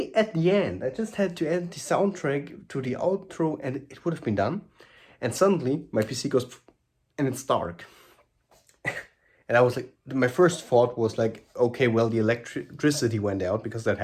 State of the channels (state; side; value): identical; both; correlation 1.00